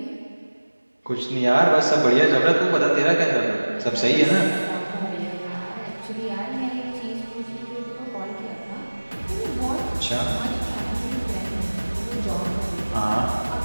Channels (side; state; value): both; inverted; correlation -1.00